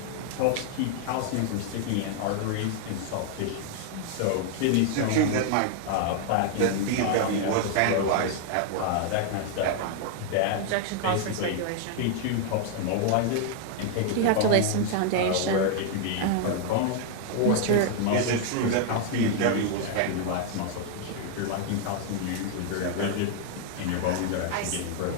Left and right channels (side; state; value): both; different; correlation 0.00